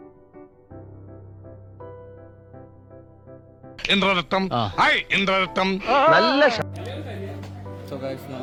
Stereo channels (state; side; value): identical; both; correlation 1.00